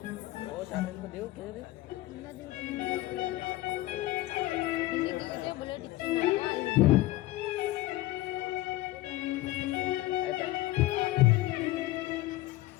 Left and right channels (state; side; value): quieter; right; 17.2 dB